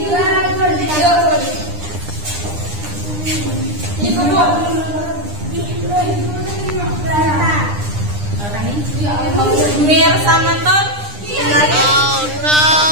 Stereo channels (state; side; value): late; left; 9.9 ms